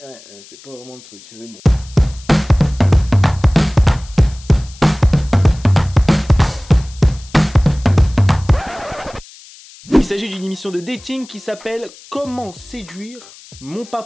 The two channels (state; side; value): noise; left; hiss, 22 dB below the sound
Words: c'est pas vraiment le truc, mais bon. Il s'agit d'une émission de dating qui s'appelle Comment séduire mon